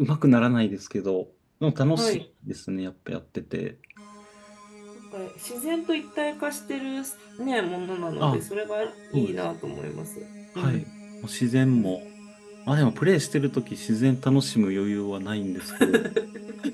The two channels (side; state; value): both; identical; correlation 1.00